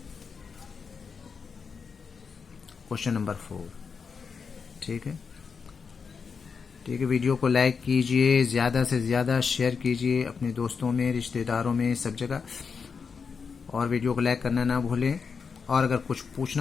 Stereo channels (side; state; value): right; quieter; 5.7 dB